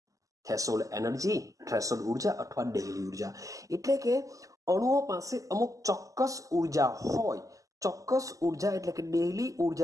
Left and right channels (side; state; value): left; late; 0.16 ms